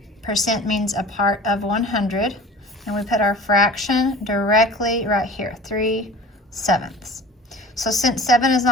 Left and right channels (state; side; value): normal; both; correlation 0.41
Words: percent means a part of 100. And we put our fraction directly right here, 3/7. So since 7 is